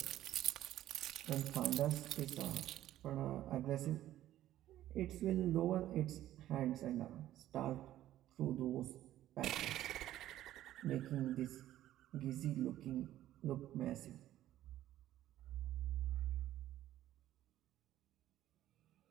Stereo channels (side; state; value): left; quieter; 13.4 dB